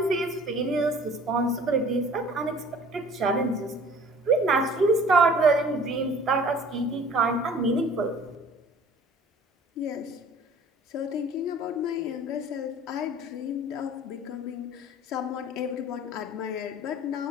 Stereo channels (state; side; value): normal; both; correlation 0.49